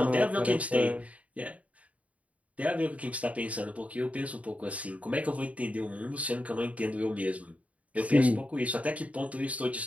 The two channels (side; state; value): left; late; 0.068 ms